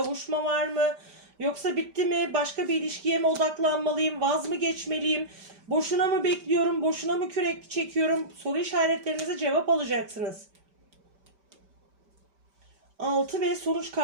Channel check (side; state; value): left; late; 5.1 ms